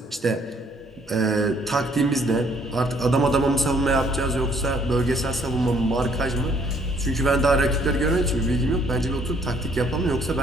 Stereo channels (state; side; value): normal; both; correlation 0.64